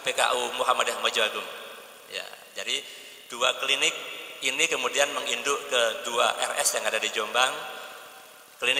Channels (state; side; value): normal; both; correlation 0.96